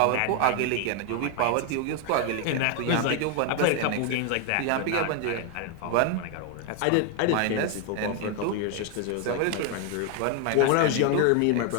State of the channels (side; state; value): both; different; correlation 0.01